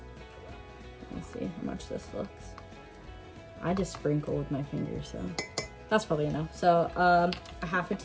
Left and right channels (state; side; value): identical; both; correlation 1.00